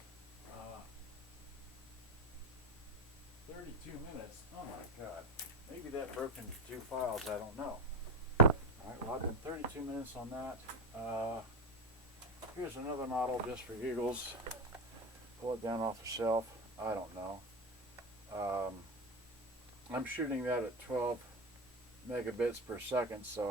32 minutes. Oh my God. Maybe that broke into 2 files. I don't know. All right. Well, I've been 32 minutes on that. Here's another model just for giggles. Pull it down off the shelf. I don't know. I'm shooting that at 12 megabits per second,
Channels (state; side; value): normal; both; correlation 0.17